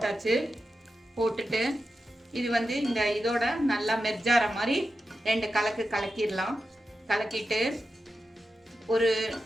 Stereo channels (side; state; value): both; normal; correlation 0.90